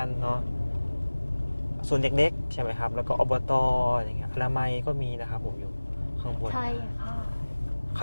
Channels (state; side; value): inverted; both; correlation -1.00